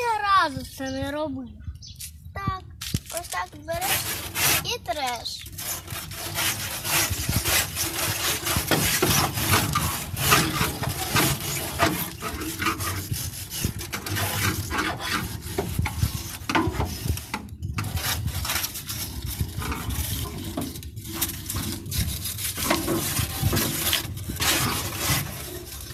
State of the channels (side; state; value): both; identical; correlation 1.00